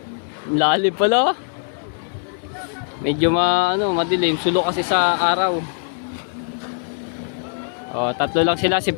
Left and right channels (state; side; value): silent; right; digital silence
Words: Lalim pala. Medyo madilim. Sulo kasi sa araw. Oh, tatlo lang sila, si